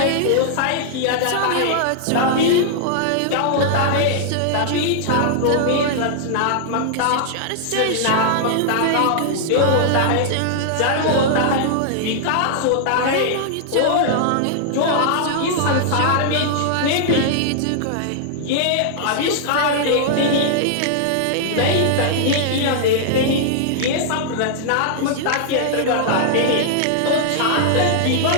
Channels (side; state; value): both; different; correlation -0.01